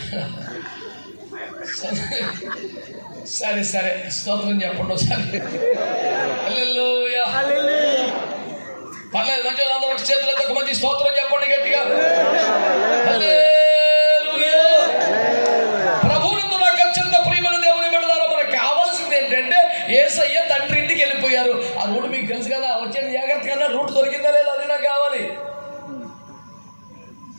సరే సరే, స్తోత్రం చెప్పండి ఒకసారి. హల్లెలూయా. పర్లేదు, మంచి అందరూ చేతులతో ఒక మంచి స్తోత్రం చెప్పండి గట్టిగా. హల్లెలూయా. ప్రభువునందు నాకు అత్యంత ప్రియమైన దేవుని బిడ్డలారా, మనకు కావాల్సింది ఏంటంటే యేసయ్య తండ్రి ఇంటికి వెళ్ళిపోయారు. ఆ రూట్ మీకు తెలుసు కదా, వచ్చేది జాగ్రత్తగా రూట్ దొరికిందా లేదా, అది నాకు కావాలి.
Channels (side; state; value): both; inverted; correlation -1.00